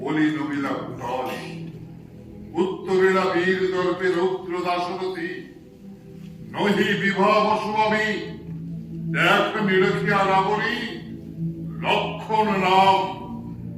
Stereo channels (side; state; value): both; identical; correlation 1.00